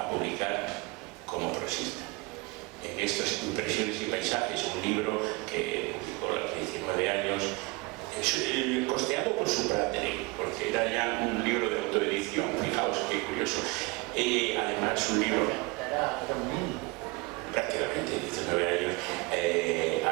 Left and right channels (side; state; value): left; quieter; 25.9 dB